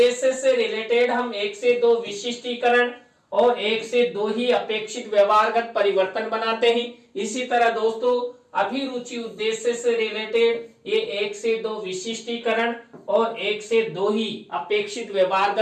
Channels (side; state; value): both; identical; correlation 1.00